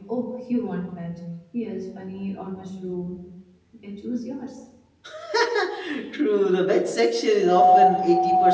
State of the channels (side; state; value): both; identical; correlation 1.00